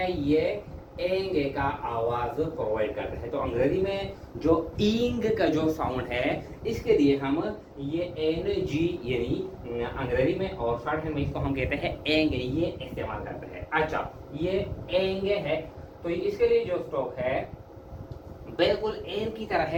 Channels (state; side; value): identical; both; correlation 1.00